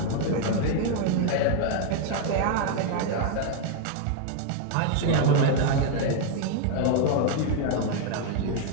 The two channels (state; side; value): different; both; correlation 0.00